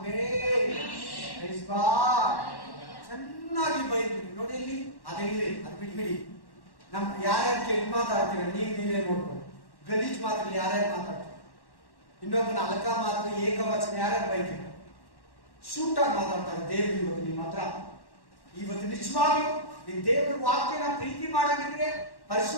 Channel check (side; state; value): right; late; 1.1 ms